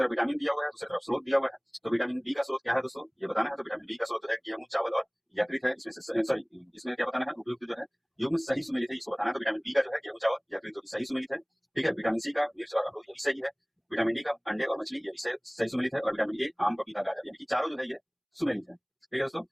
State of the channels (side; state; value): both; identical; correlation 1.00